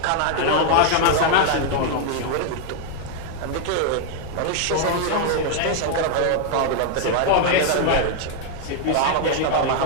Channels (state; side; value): different; both; correlation 0.00